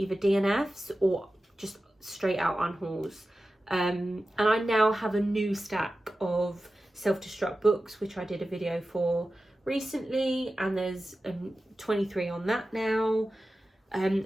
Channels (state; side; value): normal; both; correlation 0.94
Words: DNFs or just straight out unhauls. And I now have a new stack of self-destruct books, which I did a video for recently, and there's 23 on that now.